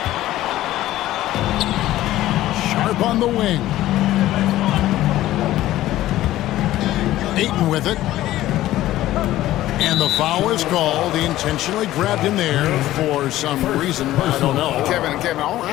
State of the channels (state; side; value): quieter; right; 14.8 dB